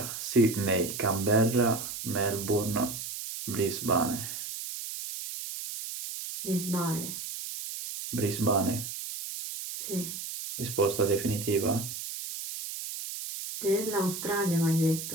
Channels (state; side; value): noise; right; hiss, 7 dB below the sound